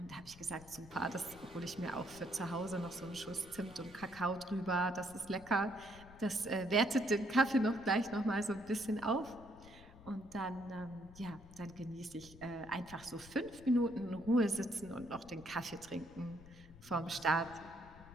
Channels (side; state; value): left; noise; rumble, 19 dB below the sound